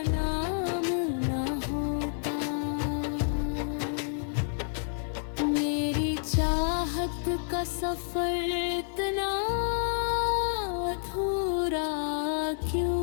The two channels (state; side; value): silent; right; 58 dB below the other